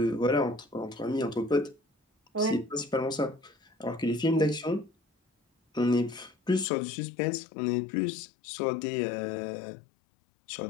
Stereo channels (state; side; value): drops out; right; at 6.7 s